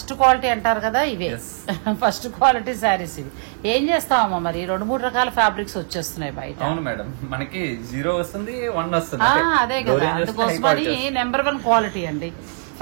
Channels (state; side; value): silent; left; 65 dB below the other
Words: క్వాలిటీ అంటారు కదా, ఇవే ఫస్ట్ క్వాలిటీ శారీస్. ఇవి ఏం చేస్తామమ్మా మరి, 2-3 రకాల ఫ్యాబ్రిక్స్ వచ్చేస్తున్నాయి బయట. అవును మేడం, మనకి 0 వస్తుంది, 1 వస్తుంది. అదే కదా, నెంబర్ 1 క్వాలిటీ అండి.